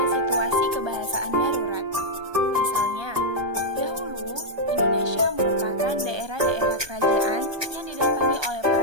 situasi kebahasaan darurat. Misalnya, dahulu Indonesia merupakan daerah-daerah kerajaan yang didatangi oleh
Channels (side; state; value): left; late; 1.3 ms